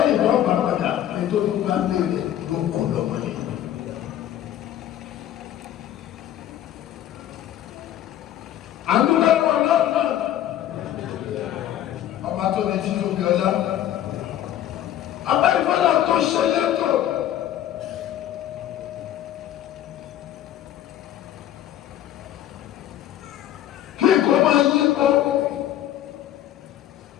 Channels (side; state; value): right; quieter; 11.9 dB